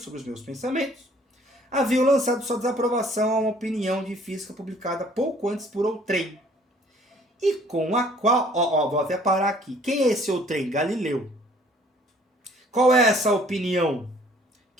os meus pensamentos, haviam lançado sua desaprovação a uma opinião de física publicada pouco antes por outrem, e com a qual... vou até parar aqui. Quem é esse outrem? Galileu. Qual é essa opinião?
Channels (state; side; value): normal; both; correlation 0.57